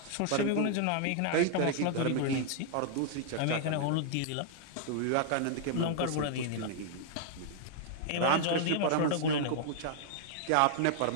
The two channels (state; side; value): different; both; correlation -0.01